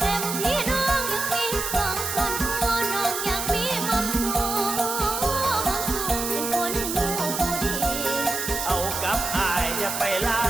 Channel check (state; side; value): noise; right; hiss, 3 dB below the sound